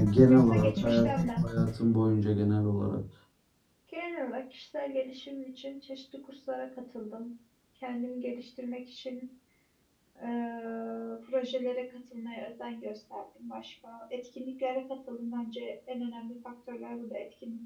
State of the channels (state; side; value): identical; both; correlation 1.00